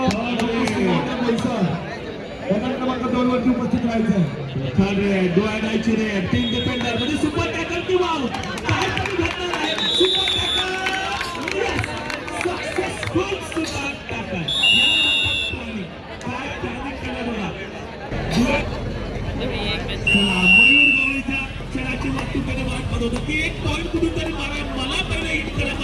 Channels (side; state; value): both; identical; correlation 1.00